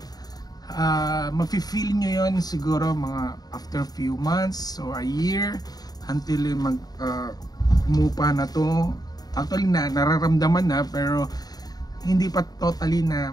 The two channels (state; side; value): late; right; 0.19 ms